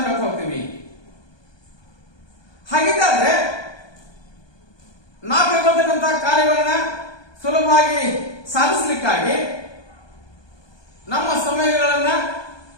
ಹೇಳ್ತಾ ಹೋಗ್ತೀವಿ. ಹಾಗಿದ್ದರೆ ನಾವು ಕೈಗೊಳ್ತಕ್ಕಂಥ ಕಾರ್ಯಗಳನ್ನ ಸುಲಭವಾಗಿ ಸಾಧಿಸಲಿಕ್ಕಾಗಿ ನಮ್ಮ ಸಮಯಗಳನ್ನ,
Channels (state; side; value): late; right; 1.2 ms